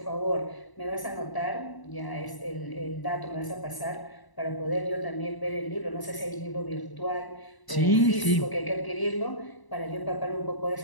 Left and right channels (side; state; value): right; late; 1.0 ms